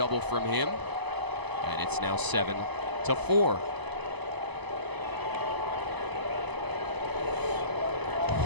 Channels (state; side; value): late; left; 1.0 ms